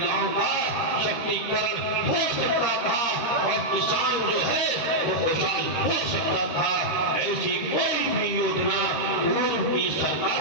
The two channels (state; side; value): late; right; 13 ms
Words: का शक्तिकरण हो सकता था और किसान जो है वो खुशहाल हो सकता था। ऐसी कोई भी योजना पूर्व की